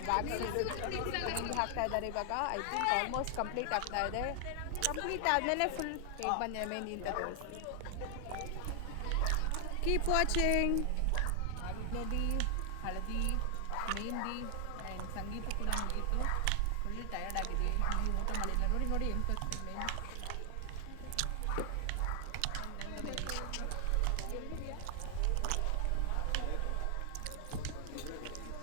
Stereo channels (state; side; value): different; both; correlation 0.00